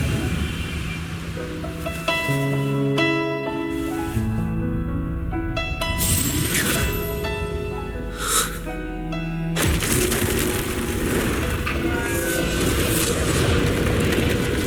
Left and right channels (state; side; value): identical; both; correlation 1.00